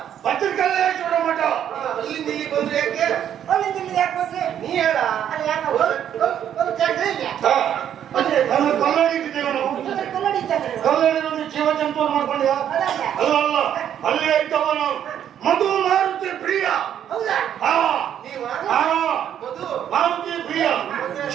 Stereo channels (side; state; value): left; quieter; 9.8 dB